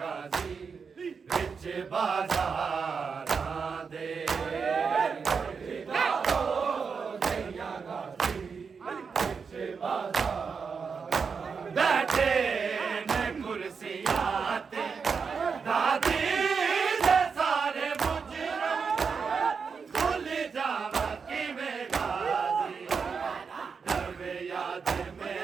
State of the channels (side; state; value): left; quieter; 5.6 dB